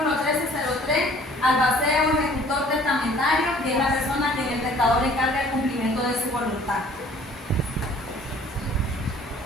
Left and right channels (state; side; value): normal; both; correlation 0.54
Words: 1303, albacea o ejecutor testamentario, que es la persona a quien el testador encarga el cumplimiento de su voluntad.